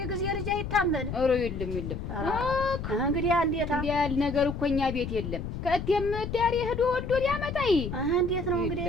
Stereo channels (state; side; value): noise; left; rumble, 6 dB below the sound